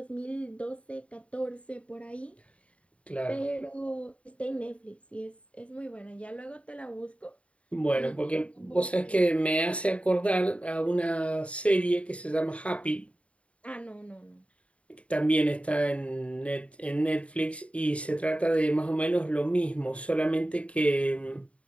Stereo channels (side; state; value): right; late; 0.063 ms